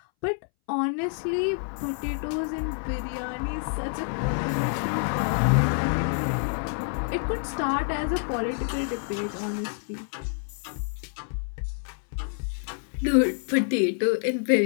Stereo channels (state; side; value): silent; right; 60 dB below the other